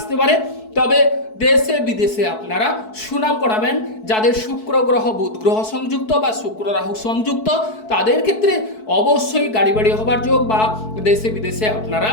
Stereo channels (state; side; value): late; right; 4.6 ms